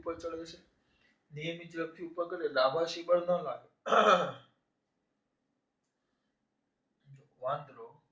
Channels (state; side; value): identical; both; correlation 1.00